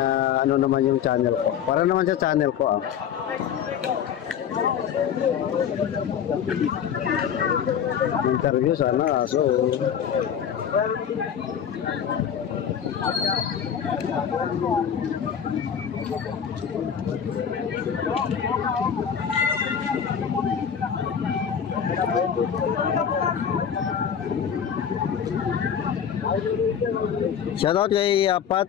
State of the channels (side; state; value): right; quieter; 8.2 dB